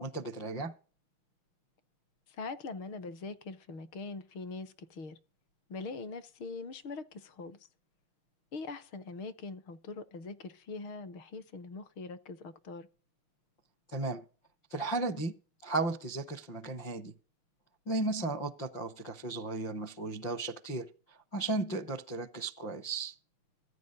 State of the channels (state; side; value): late; right; 5.8 ms